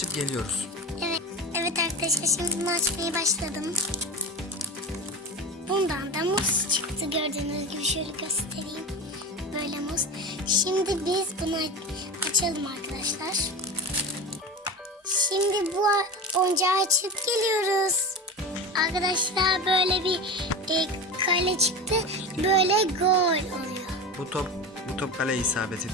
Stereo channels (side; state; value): both; normal; correlation 0.27